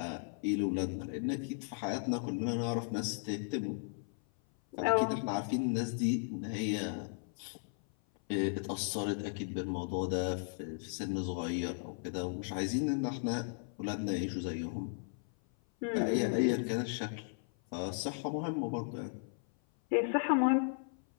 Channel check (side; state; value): right; silent; 54 dB below the other